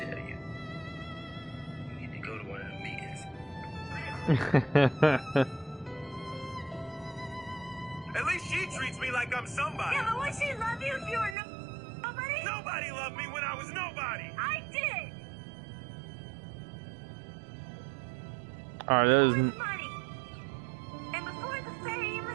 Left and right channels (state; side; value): drops out; left; at 11.4 s